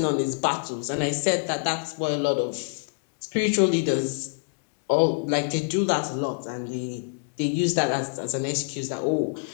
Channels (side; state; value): right; silent; digital silence